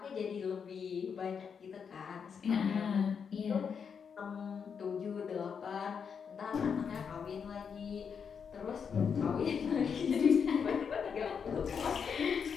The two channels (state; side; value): quieter; right; 6.6 dB